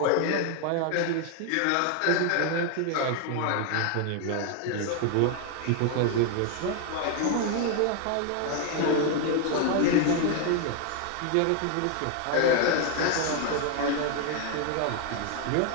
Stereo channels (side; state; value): both; different; correlation 0.01